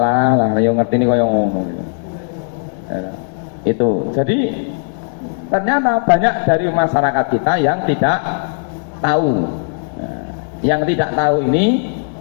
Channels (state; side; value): silent; right; digital silence